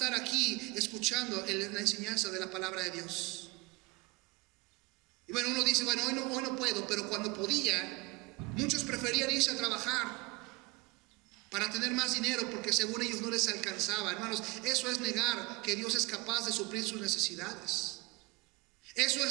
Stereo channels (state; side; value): quieter; left; 25.2 dB